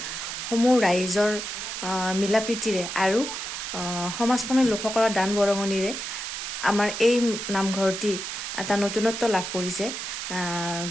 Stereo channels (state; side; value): noise; right; hiss, 5 dB below the sound